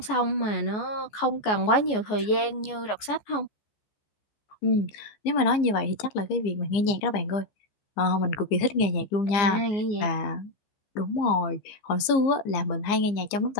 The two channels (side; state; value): right; late; 15 ms